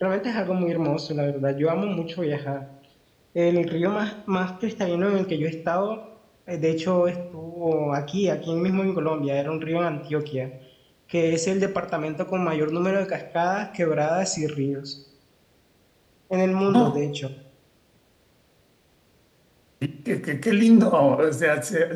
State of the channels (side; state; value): both; identical; correlation 1.00